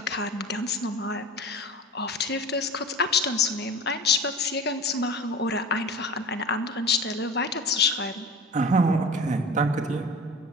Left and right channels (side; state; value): both; normal; correlation 0.35